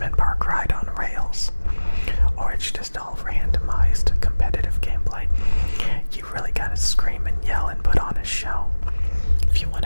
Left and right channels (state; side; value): inverted; both; correlation -1.00